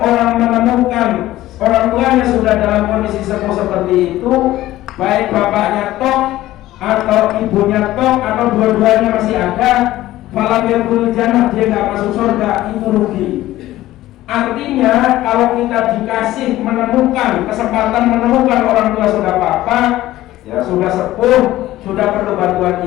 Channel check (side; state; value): right; quieter; 15.4 dB